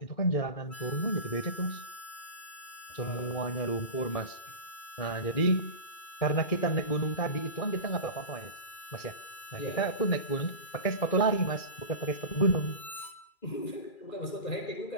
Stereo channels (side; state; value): right; late; 2.3 ms